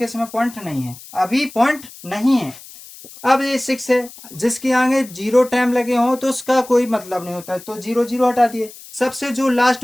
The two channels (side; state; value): left; noise; hiss, 18 dB below the sound